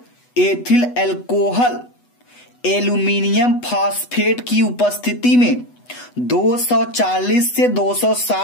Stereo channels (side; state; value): right; late; 8.1 ms